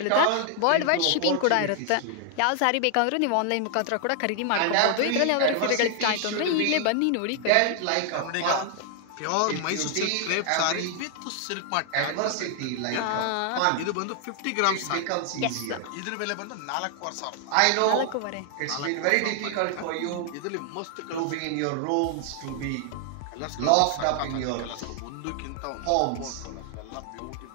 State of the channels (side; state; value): both; different; correlation 0.00